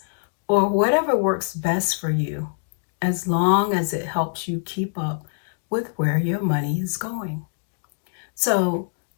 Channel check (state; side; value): silent; right; digital silence